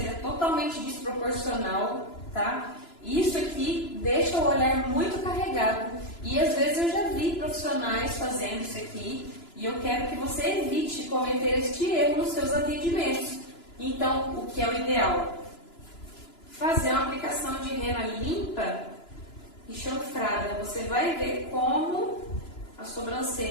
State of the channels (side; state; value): right; late; 2.9 ms